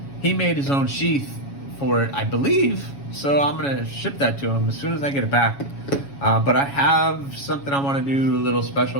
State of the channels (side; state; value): right; late; 7.2 ms